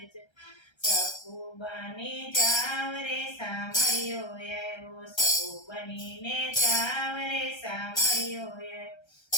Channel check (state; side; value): late; right; 1.3 ms